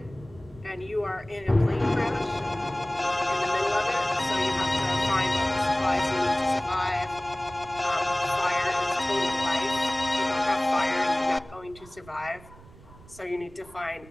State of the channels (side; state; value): right; noise; rumble, 22 dB below the sound